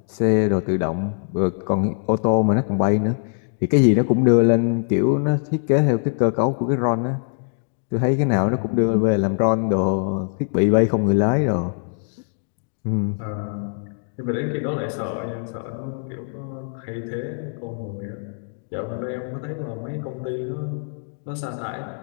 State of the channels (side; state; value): right; silent; digital silence